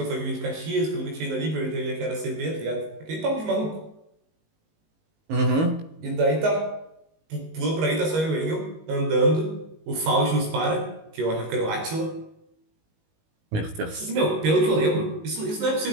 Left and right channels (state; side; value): late; left; 19 ms